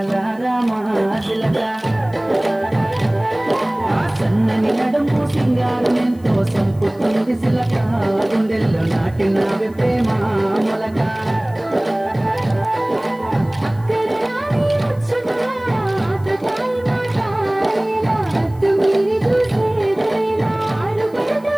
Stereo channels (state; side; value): noise; left; hiss, 29 dB below the sound